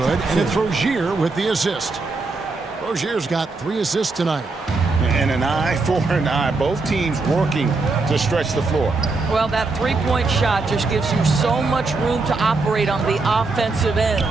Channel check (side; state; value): left; quieter; 3.7 dB